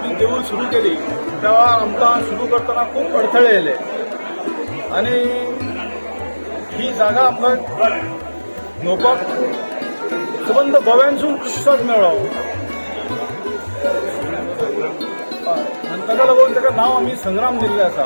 देऊळ सुरू केली तेव्हा आमकां सुरू करतना खूप अडथळे येले आणि ही जागा आमकां घेवपाक संबंद गोव्यानसून प्रतिसाद मेळ्ळो आनी ताका लागून ताका नांव आमी संग्राम दिल्लें आसा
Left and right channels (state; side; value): inverted; both; correlation -1.00